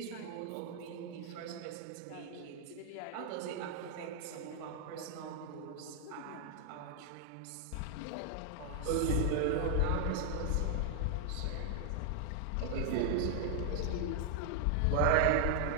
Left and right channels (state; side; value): different; both; correlation 0.00